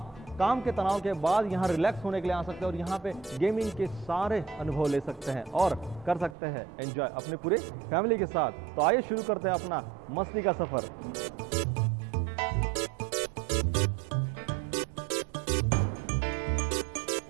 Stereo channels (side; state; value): left; drops out; at 6.4 s